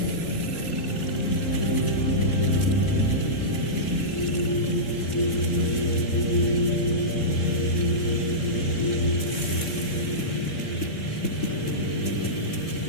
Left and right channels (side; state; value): right; late; 3.7 ms